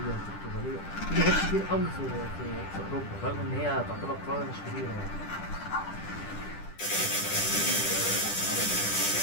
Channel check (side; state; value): right; late; 10 ms